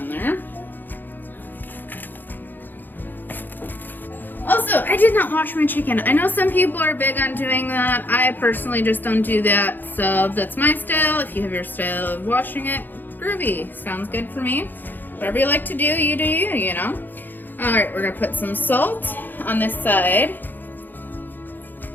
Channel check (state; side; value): late; right; 0.089 ms